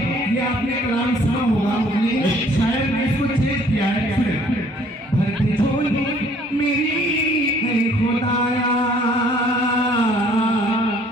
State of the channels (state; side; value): normal; both; correlation 0.58